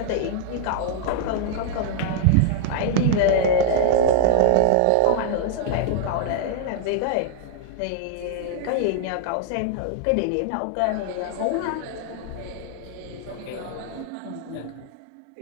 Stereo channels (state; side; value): different; both; correlation -0.01